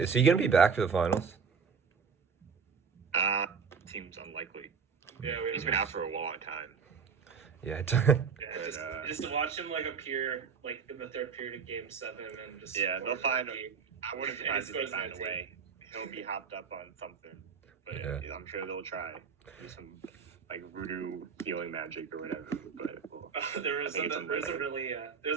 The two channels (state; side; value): quieter; left; 6.0 dB